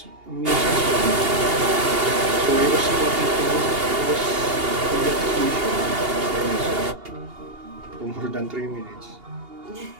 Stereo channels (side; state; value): left; late; 2.8 ms